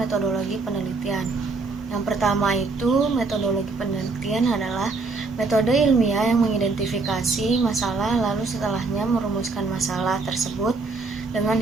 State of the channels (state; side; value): quieter; left; 3.9 dB